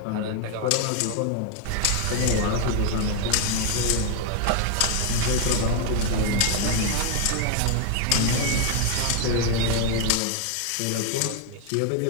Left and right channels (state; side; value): different; both; correlation 0.01